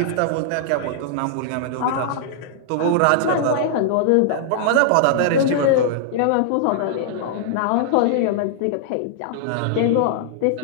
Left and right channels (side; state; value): both; different; correlation -0.01